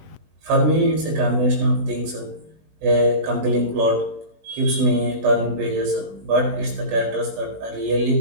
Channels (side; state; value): left; late; 20 ms